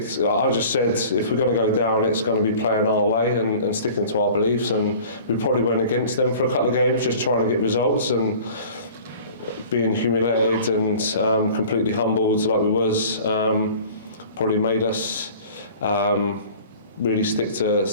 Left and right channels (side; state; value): both; inverted; correlation -0.45